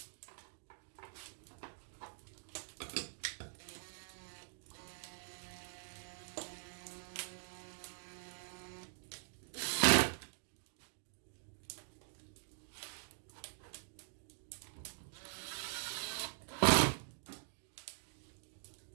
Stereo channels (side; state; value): left; silent; digital silence